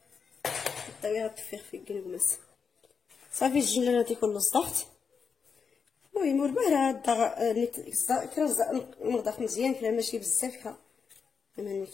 الطاويه غتفيخ في الكنكماس صافي الجنجلان تيكون صدقت المهم ورباه كرا نضاف مزيان كلا ماشي بزاف كا اما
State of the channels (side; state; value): right; quieter; 5.9 dB